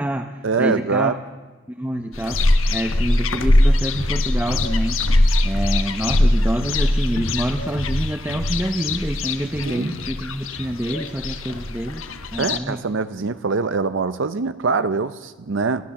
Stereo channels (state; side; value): normal; both; correlation 0.70